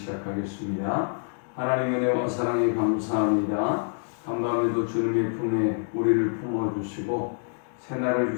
하나님의 은혜와 사랑에 감사합니다. 간밤에도 주님의 품에 우리를 품어주시고 새날을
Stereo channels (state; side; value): silent; right; digital silence